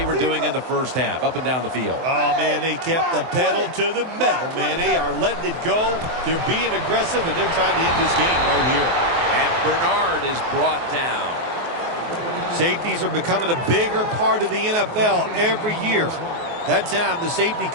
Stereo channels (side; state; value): left; late; 23 ms